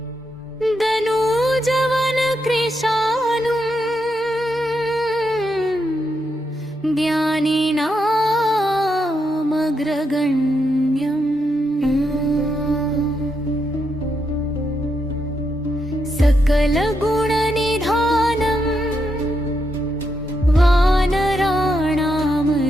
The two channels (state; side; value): normal; both; correlation 0.82